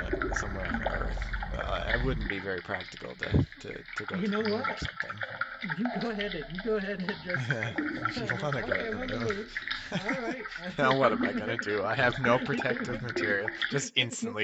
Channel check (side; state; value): both; identical; correlation 1.00